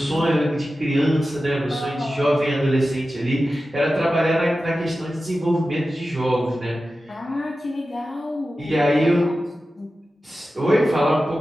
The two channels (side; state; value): both; normal; correlation 0.93